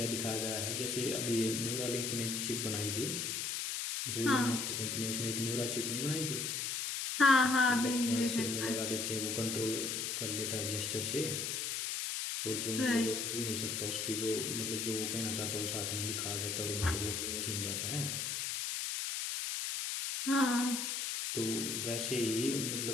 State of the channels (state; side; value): noise; left; hiss, 1 dB below the sound